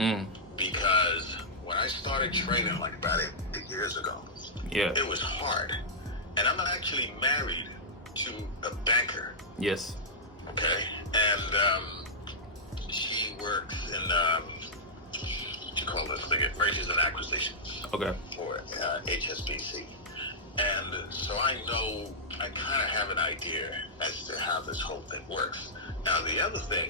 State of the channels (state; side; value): normal; both; correlation -0.12